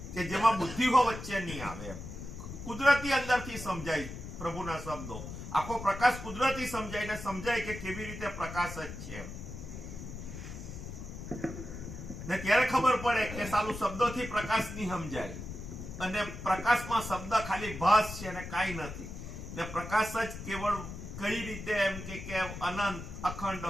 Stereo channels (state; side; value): noise; left; rumble, 9 dB below the sound